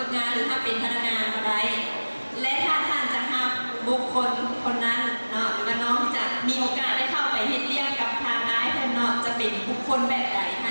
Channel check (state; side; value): inverted; both; correlation -1.00